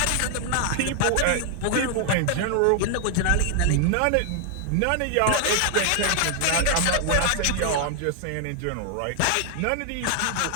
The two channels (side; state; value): both; different; correlation 0.00